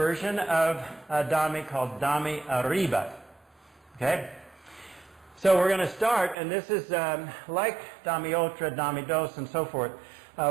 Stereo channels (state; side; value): drops out; left; at 6.4 s